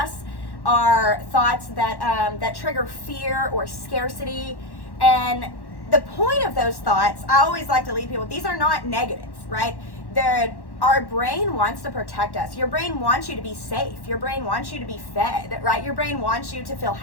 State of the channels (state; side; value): late; right; 1.1 ms